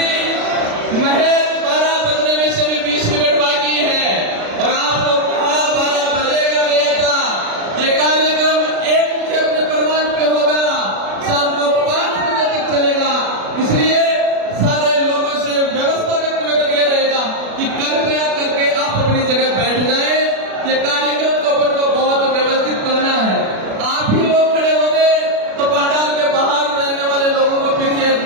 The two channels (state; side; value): late; left; 36 ms